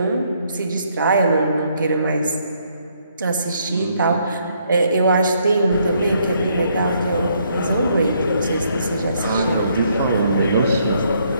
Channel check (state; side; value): inverted; both; correlation -0.70